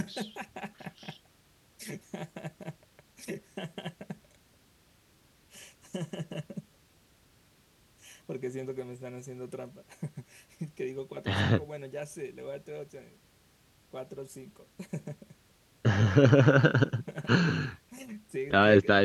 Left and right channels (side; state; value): both; identical; correlation 1.00